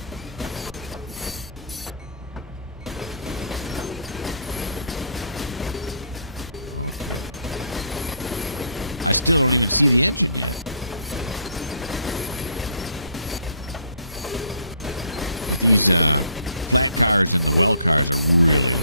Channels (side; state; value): both; inverted; correlation -0.62